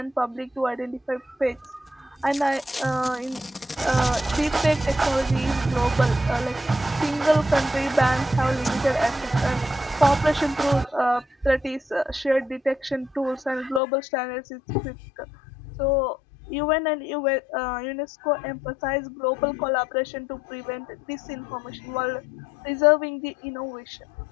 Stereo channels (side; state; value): right; drops out; at 13.8 s